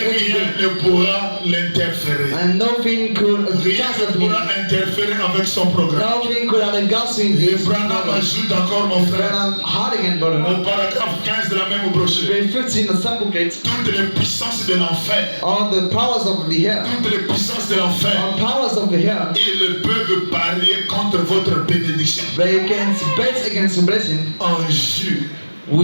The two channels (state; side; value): inverted; both; correlation -1.00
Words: rien ne pourra l'interférer. And nothing could Rien cancel ne him. pourra interférer avec son programme. Nothing could have against him. Et Branham ajoute encore, mon frère, Branham hard again, brother. au paragraphe 15 de la même brochure, Very 15, the sample plate. toutes les puissances de l'enfer, All the powers of the air. toutes les puissances de l'enfer, All powers of the air. ils peuvent parier contre votre bénédiction. They can bet against the blessing. En jure,